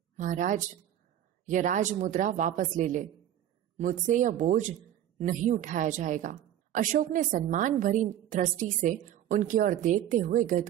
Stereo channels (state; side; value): quieter; left; 11.4 dB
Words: महाराज, यह राजमुद्रा वापस ले ले, मुझसे यह बोझ नहीं उठाया जाएगा। अशोक ने सम्मान भरी दृष्टि से उनकी ओर देखते हुए